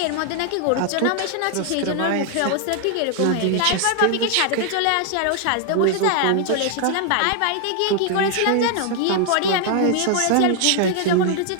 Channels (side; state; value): both; different; correlation 0.00